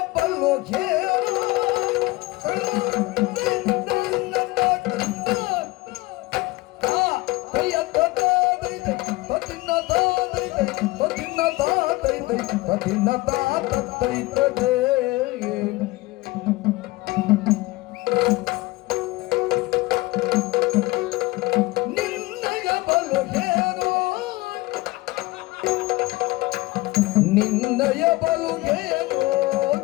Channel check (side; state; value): right; quieter; 20.7 dB